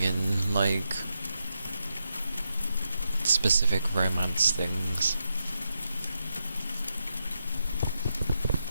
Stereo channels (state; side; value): inverted; both; correlation -0.84